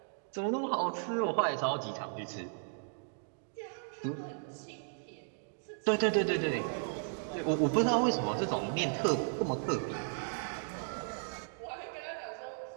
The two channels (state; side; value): silent; left; digital silence